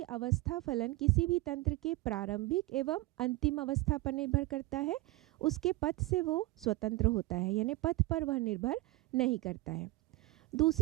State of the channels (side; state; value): left; quieter; 20.1 dB